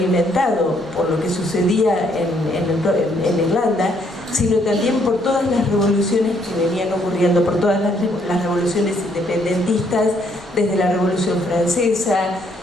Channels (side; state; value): both; normal; correlation 0.69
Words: por lo que sucedía en Irlanda, sino también por todas las revoluciones que venían ocurriendo, por todas las revoluciones independentistas, desde la Revolución Francesa,